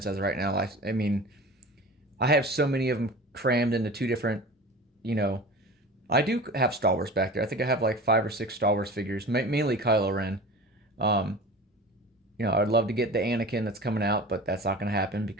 as of right now. I have so many of them crammed into 2 different, I do have Star Wars back there. I think I have like 5 or 6 Star Wars figures, mainly Kylo Ren. I'd love to get the Anakin that's coming out, but that's not going to happen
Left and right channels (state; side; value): normal; both; correlation 0.36